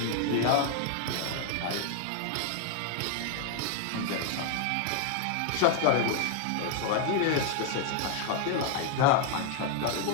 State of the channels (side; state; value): both; different; correlation 0.00